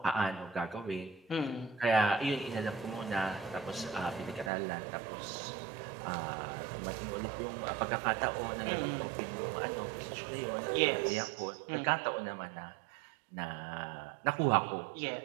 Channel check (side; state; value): left; drops out; at 4.5 s